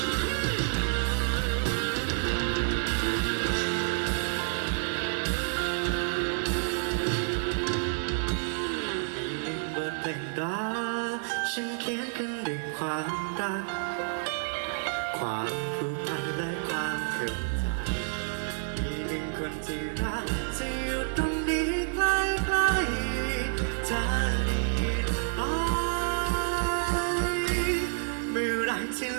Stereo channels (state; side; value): silent; left; digital silence